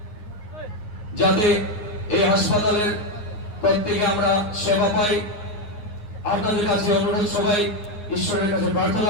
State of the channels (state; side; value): late; right; 9.5 ms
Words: যাতে এই হাসপাতালের প্রত্যেকে আমরা সেবা পাই। আপনাদের কাছে অনুরোধ, সবাই ঈশ্বরের কাছে প্রার্থনা